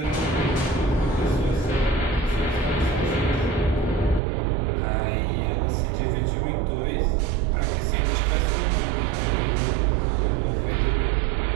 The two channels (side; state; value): left; drops out; at 4.2 s